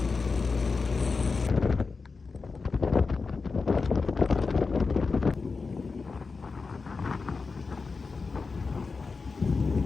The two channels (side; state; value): right; quieter; 4.4 dB